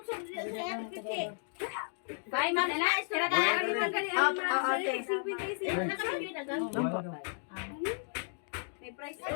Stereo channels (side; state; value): right; silent; digital silence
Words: sa RPT. Bye, madala. Sira ka. Okay. May price